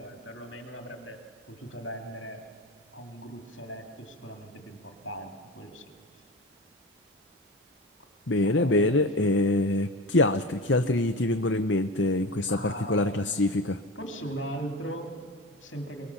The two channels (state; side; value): normal; both; correlation 0.29